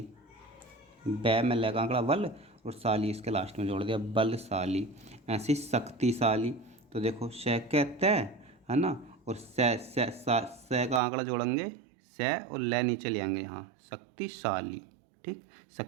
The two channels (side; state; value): left; drops out; at 11.0 s